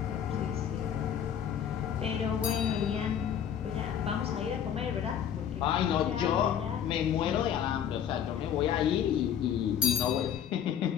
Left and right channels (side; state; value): right; quieter; 9.1 dB